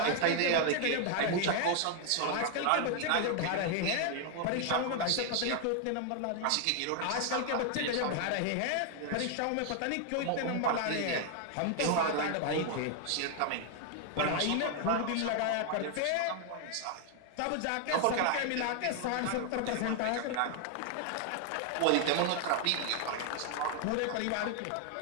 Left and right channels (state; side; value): different; both; correlation 0.00